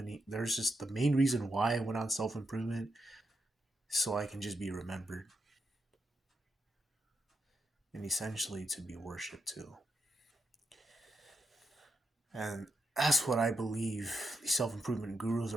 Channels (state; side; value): normal; both; correlation 0.84